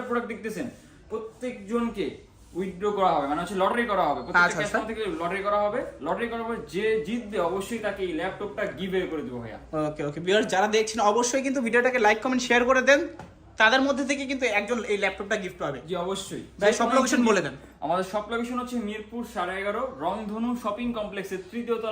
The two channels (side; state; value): both; identical; correlation 1.00